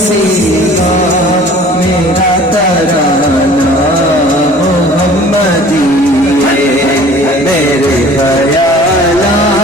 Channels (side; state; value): both; normal; correlation 0.48